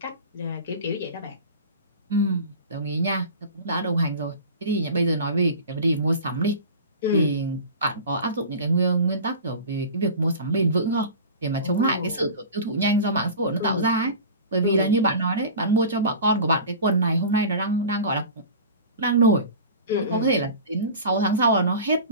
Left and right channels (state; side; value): inverted; both; correlation -0.36